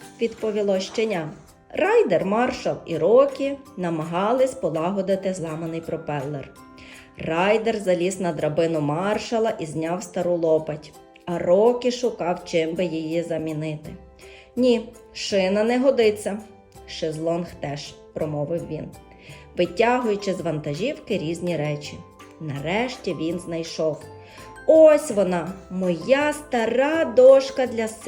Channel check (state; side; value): identical; both; correlation 1.00